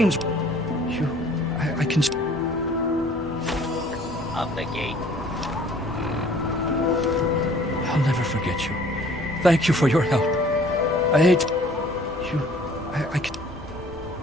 I can... Up the gate. I'll never forget you. Thank you for your help. I hate... I can...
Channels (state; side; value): normal; both; correlation 0.54